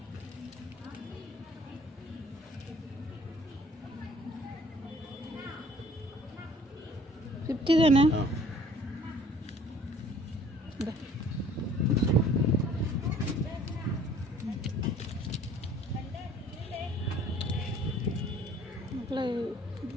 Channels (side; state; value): both; normal; correlation 0.54